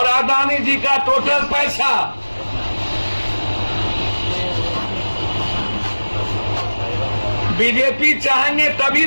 अदानी जी का टोटल पैसा, बीजेपी चाहेंगे तभी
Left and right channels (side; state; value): both; inverted; correlation -1.00